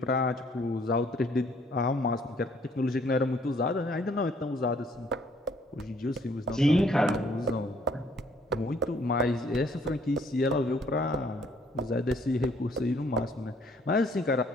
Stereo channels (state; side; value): normal; both; correlation 0.63